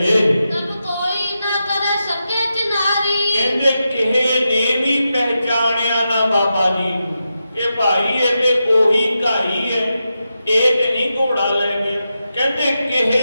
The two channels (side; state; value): both; inverted; correlation -0.88